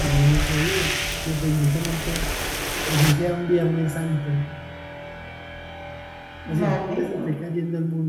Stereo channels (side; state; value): both; identical; correlation 1.00